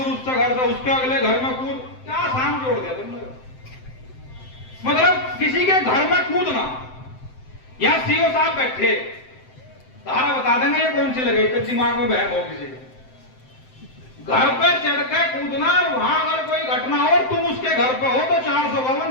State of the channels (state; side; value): late; right; 7.8 ms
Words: उसके घर से उसके अगले घर में कूद, क्या शाम जोड़ दिया तुमने। मतलब किसी के घर में कूदना, या सीओ साहब बैठे तारा बता देंगे ये कौन सी लगे, तो दिमाग में बहम हो किसी घर पे चढ़ के कूदना, वहां अगर कोई घटना हो तुम उसके घर पे हो तो